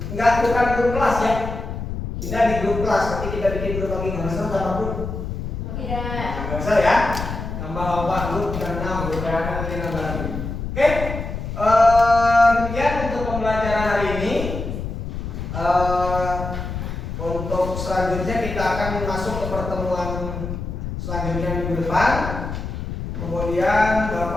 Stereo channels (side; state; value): left; noise; rumble, 6 dB below the sound